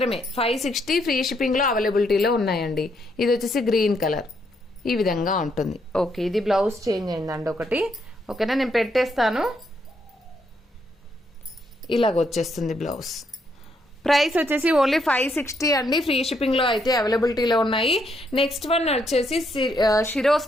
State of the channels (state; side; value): normal; both; correlation 0.75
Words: 560 ఫ్రీ షిప్పింగ్ లో అవైలబిలిటీలో ఉన్నాయండి. ఇది వచ్చేసి గ్రీన్ కలర్ ఈ విధంగా ఉంటుంది. ఓకే. ఇది బ్లౌజ్ చేంజ్ అయిందండి ఒకటి. ఓకేనా. నేను పెట్టేస్తాను, ఇలాగ వచ్చేస్తుంది బ్లౌజ్. ప్రైస్ వచ్చేసి ఓన్లీ 560 అండి, ఫ్రీ షిప్పింగ్ లో అయితే అవైలబిలిటీలో ఉన్నాయి. నెక్స్ట్ వన్ వచ్చేసి